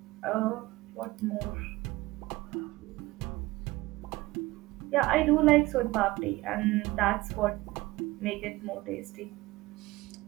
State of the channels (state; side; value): quieter; left; 19.9 dB